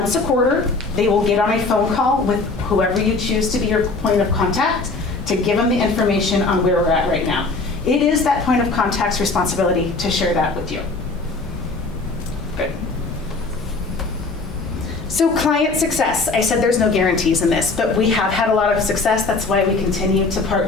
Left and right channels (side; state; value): right; quieter; 3.7 dB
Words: a quarter, they will get on a phone call with whoever you choose to be your point of contact to give them the information on where we're at right now. It is that point of contact's responsibility to share that with you. Good. So client success, I said there's no guarantees in this, but we have had a lot of success. That's why we continue to